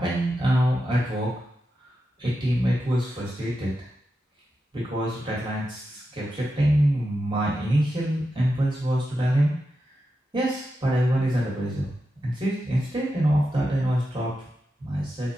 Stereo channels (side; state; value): both; normal; correlation 0.89